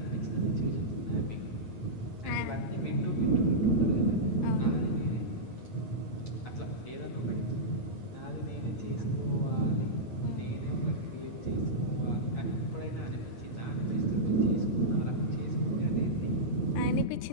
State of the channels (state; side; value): late; right; 9.4 ms